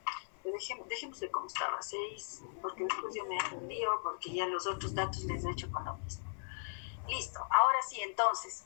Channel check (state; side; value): silent; right; digital silence